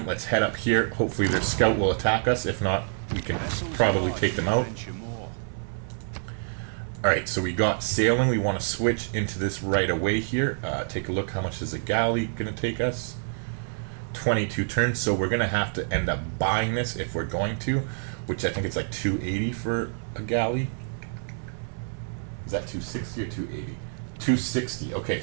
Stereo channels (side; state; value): left; silent; 60 dB below the other